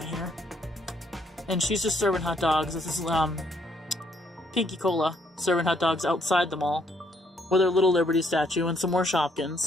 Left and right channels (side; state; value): both; normal; correlation 0.69